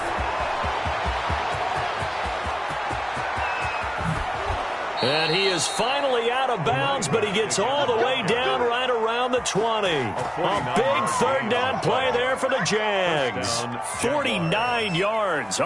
And he is finally out of bounds, but he gets all the way down right around the 20. A big 3rd down play there for the Jags. 49 yards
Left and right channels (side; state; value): both; identical; correlation 1.00